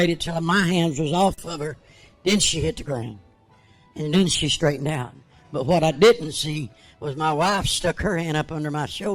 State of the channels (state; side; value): identical; both; correlation 1.00